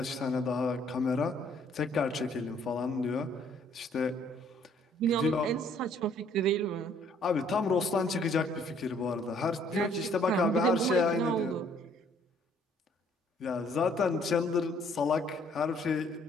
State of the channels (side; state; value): both; normal; correlation 0.62